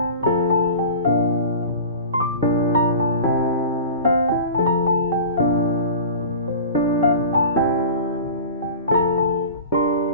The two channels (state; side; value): inverted; both; correlation -0.37